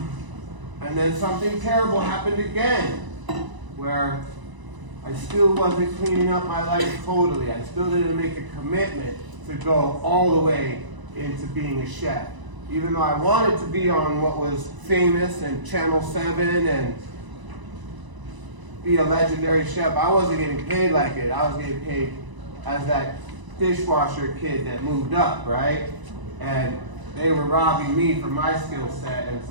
then something terrible happened again, where I still wasn't cleaning up my life totally. I still didn't make a commitment to go all the way into being a chef. Even though I wanted to be on what was famous and Channel 7 and be a legendary chef, I wasn't getting paid like it. I was getting paid as that dishwasher kid that moved up, right? And they were robbing me from my skill set, and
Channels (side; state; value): left; late; 1.0 ms